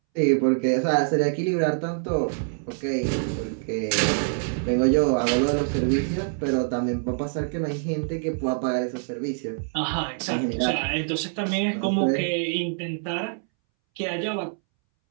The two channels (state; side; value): silent; left; 62 dB below the other